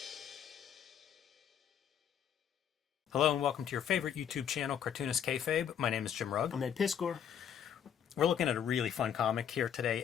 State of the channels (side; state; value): right; quieter; 8.8 dB